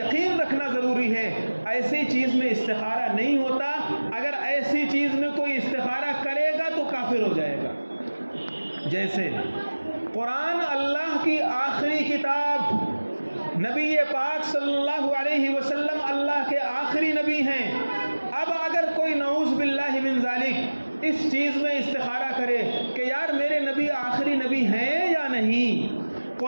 رکھنا ضروری ہے، ایسی چیز میں استخارہ نہیں ہوتا۔ اگر ایسی چیز میں کوئی استخارہ کرے گا تو کافر ہو جائے گا۔ جیسے قرآن اللہ کی آخری کتاب، نبی پاک صلی اللہ علیہ وسلم اللہ کے آخری نبی ہیں۔ اب اگر کوئی نعوذ باللہ من ذالک اس چیز میں استخارہ کرے کہ یار میرے نبی آخری نبی ہیں یا نہیں،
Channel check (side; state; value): both; inverted; correlation -1.00